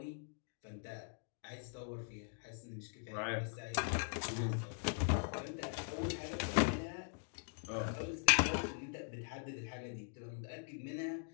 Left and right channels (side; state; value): right; silent; digital silence